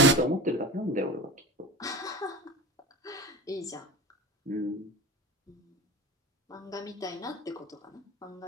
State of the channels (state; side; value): normal; both; correlation 0.29